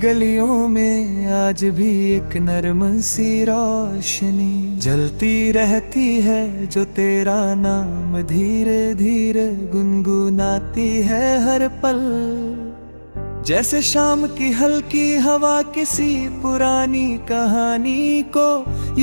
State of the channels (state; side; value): inverted; both; correlation -1.00